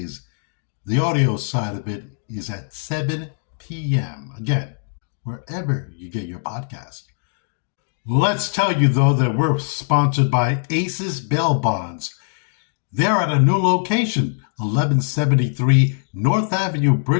The audio side of it is at 7 p.m. Again, wherever you get your podcast. Let's tell you, though, that we're sponsored by Aces Bail Bonds. They're at a new location, 1173 North Avenue,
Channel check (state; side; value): silent; right; digital silence